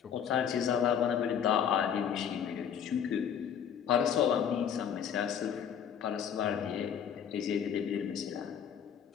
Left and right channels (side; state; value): right; quieter; 8.4 dB